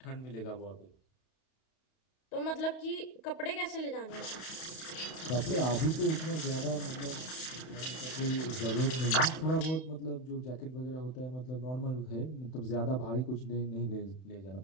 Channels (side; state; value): right; late; 31 ms